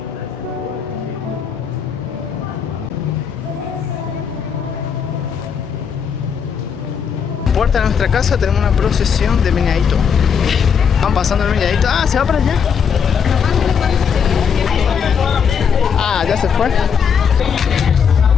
puerta de nuestra casa tenemos una procesión de meneadito. Van pasando el meneadito. Ah, se va para allá. Ah, ya se fue.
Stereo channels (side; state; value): right; quieter; 6.9 dB